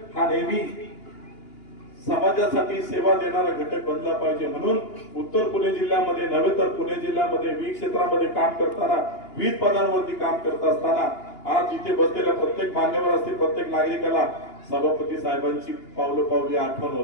हा नेहमी समाजासाठी सेवा देणारा घटक बनला पाहिजे. म्हणून उत्तर पुणे जिल्ह्यामध्ये नव्हे तर पुणे जिल्ह्यामध्ये विविध क्षेत्रामध्ये काम करताना, विविध पदांवरती काम करत असताना आज इथे बसलेल्या प्रत्येक मान्यवर असतील, प्रत्येक नागरिकाला सभापती साहेबांची पावली आठवण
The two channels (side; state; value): right; late; 2.9 ms